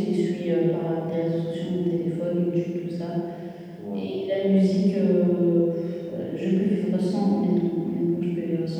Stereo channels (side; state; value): both; identical; correlation 1.00